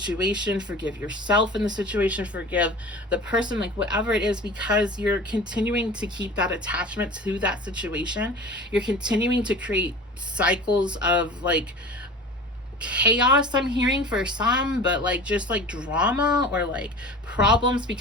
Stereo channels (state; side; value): normal; both; correlation 0.38